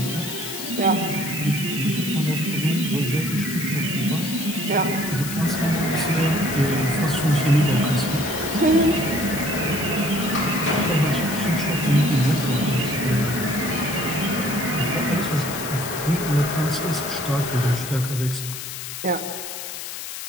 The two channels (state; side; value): noise; left; hiss, 8 dB below the sound